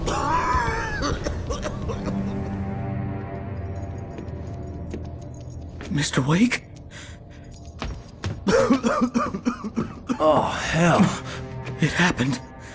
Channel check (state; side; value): identical; both; correlation 1.00